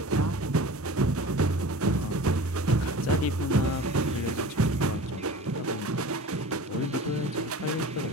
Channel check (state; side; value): normal; both; correlation 0.38